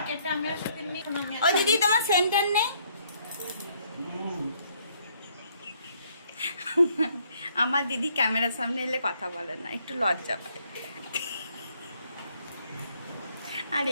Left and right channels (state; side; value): inverted; both; correlation -0.68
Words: কেটে আমি আর সাথে নিই। ও দিদি, তোমার সেন্টার নেই? আমার দিদি ক্যামেরার সামনে এলে কথা বলে না, একটু লজ্জা পায়। আর